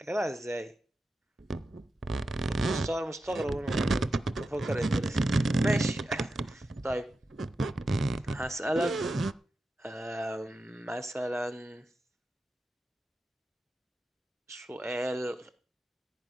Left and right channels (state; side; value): normal; both; correlation 0.90